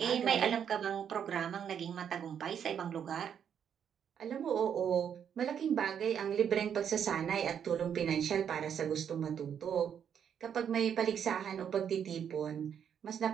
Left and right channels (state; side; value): quieter; left; 8.3 dB